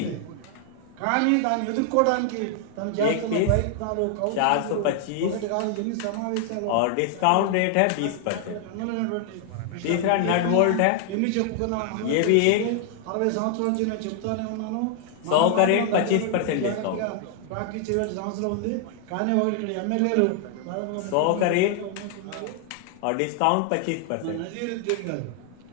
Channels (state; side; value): different; both; correlation 0.00